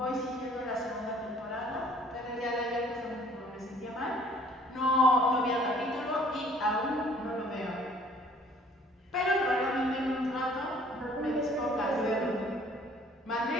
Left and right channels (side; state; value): both; normal; correlation 0.56